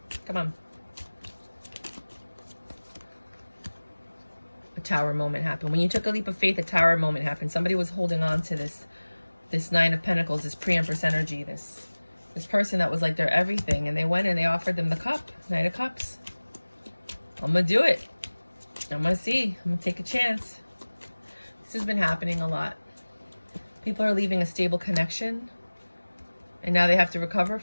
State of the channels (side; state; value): both; inverted; correlation -1.00